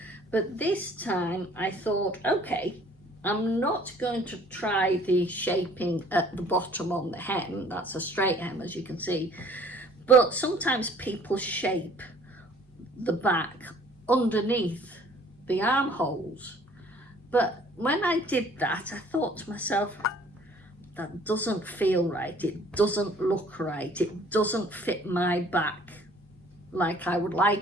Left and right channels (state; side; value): normal; both; correlation 0.55